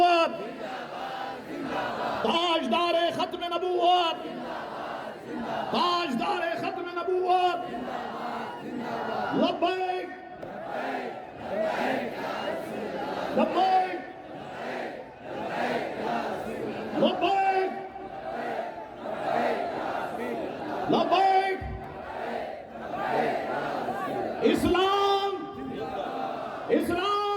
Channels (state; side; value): identical; both; correlation 1.00